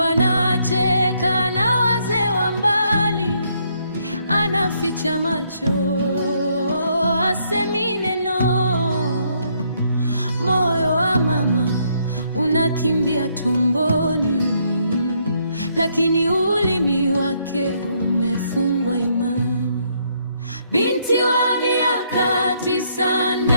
anacheka na wazee wa mbali, anaficha macho, hasemi neno. Moyo wa mama unakimbia tumboni, lakini ulimi wake umefungwa imani. Binti wa miaka 9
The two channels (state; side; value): inverted; both; correlation -0.72